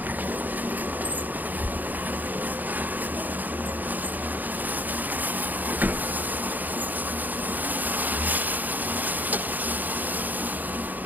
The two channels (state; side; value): late; left; 0.084 ms